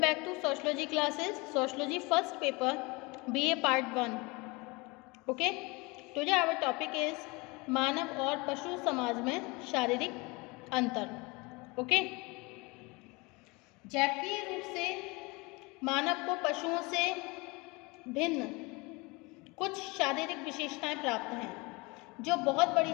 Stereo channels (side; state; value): right; quieter; 25.9 dB